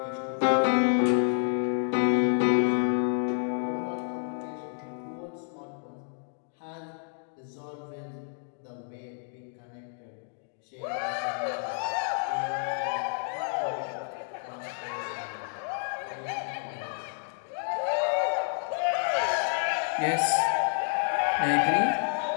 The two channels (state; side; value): silent; right; 58 dB below the other